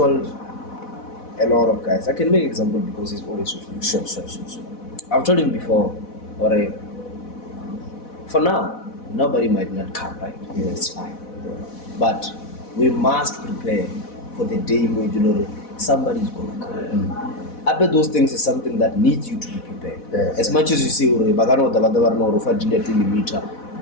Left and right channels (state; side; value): late; right; 4.1 ms